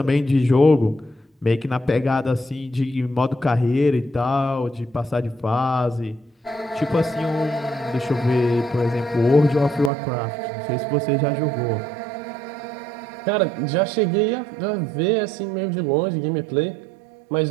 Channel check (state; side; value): drops out; left; at 9.9 s